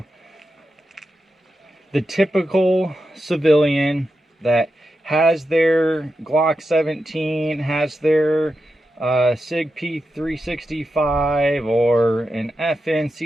the typical civilian that has their Glock 17, has their SIG P365 or an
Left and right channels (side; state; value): both; normal; correlation 0.89